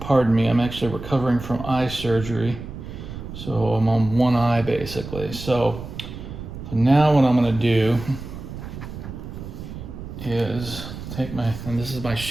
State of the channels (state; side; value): noise; right; rumble, 10 dB below the sound